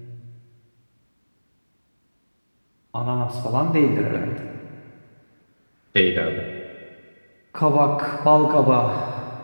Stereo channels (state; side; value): inverted; both; correlation -1.00